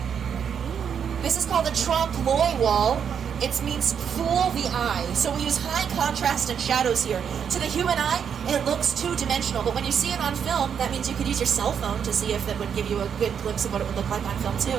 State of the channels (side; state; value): left; quieter; 7.6 dB